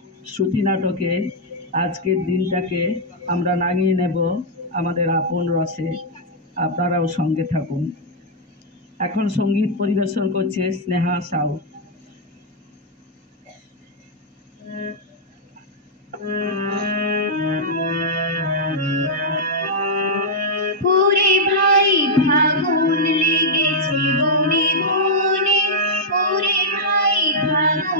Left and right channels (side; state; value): both; normal; correlation -0.05